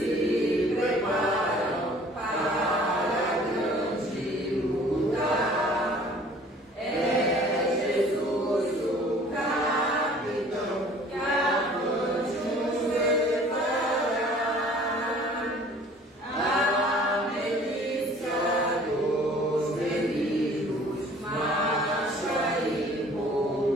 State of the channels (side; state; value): both; normal; correlation 0.51